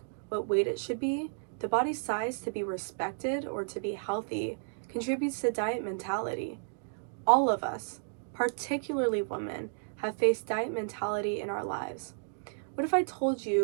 what weight it should be, the body's size to be respected or to be healthy, contributes to diet mentality. All of us, particularly women, have faced diet mentality in our lives. What if I told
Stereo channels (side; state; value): left; silent; digital silence